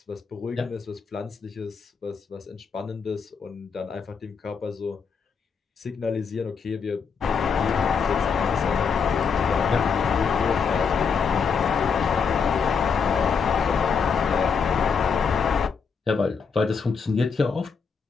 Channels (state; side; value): quieter; right; 5.9 dB